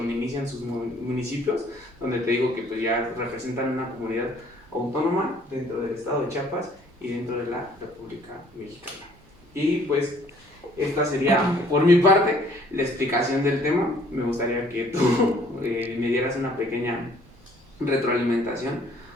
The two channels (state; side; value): normal; both; correlation 0.59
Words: inician sus municipios, donde te digo que pues ya representan una comunidad autónoma dentro del estado de Chiapas y dentro de la República Mexicana. Y pues esta sería por mi parte la explicación del tema. Me gustaría que tú me dieras una pequeña retroalimentación,